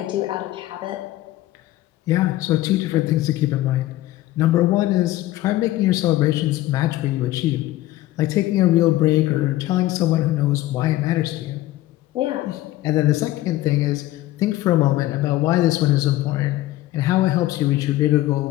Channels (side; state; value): right; quieter; 16.0 dB